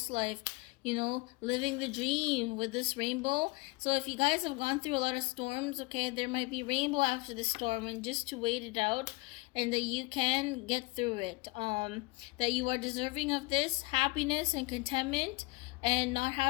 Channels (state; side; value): quieter; right; 24.3 dB